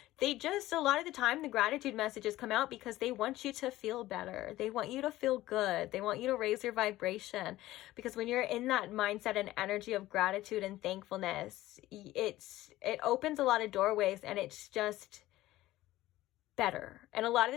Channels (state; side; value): quieter; right; 16.2 dB